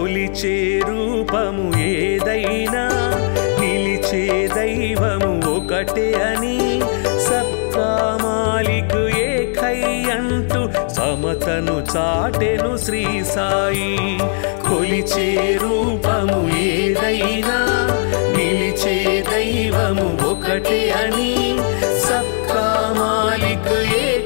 రూపము ఏదైనా నిలిచే దైవము ఒకటే అని సబ్కా మాలిక్ ఏకై అంటూ సమతను చాటెను శ్రీ సాయి. కొలిచే రూపము ఏదైనా నిలిచే దైవము ఒకటే అని సబ్కా మాలిక్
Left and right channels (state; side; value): silent; right; 67 dB below the other